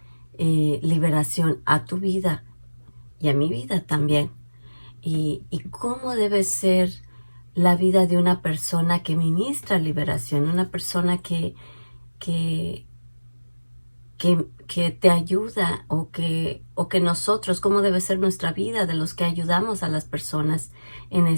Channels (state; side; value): inverted; both; correlation -1.00